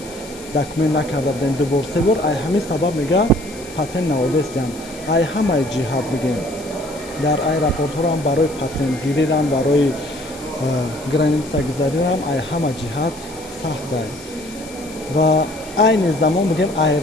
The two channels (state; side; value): noise; left; hiss, 19 dB below the sound